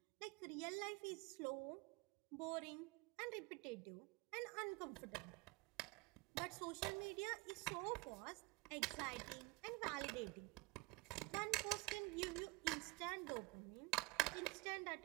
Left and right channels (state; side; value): quieter; left; 24.4 dB